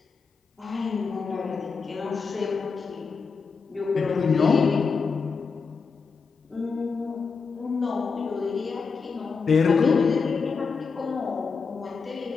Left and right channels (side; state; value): right; quieter; 5.1 dB